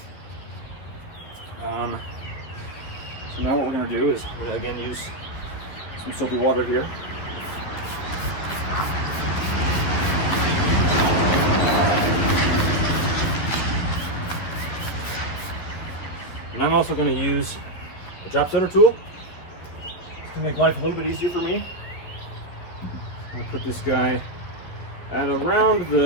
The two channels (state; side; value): late; right; 12 ms